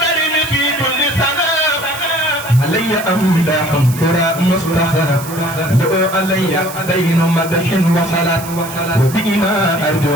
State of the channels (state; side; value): noise; right; hiss, 13 dB below the sound